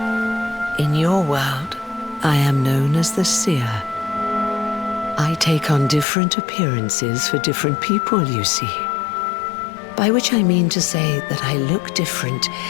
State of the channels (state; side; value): drops out; right; at 6.1 s